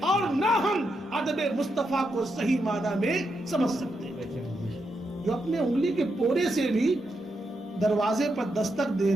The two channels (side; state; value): both; normal; correlation 0.83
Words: اور نہ ہم ادب مصطفیٰ کو صحیح معنی میں سمجھ سکتے ہیں. جو اپنے انگلی کے پورے سے بھی دروازے پر دستک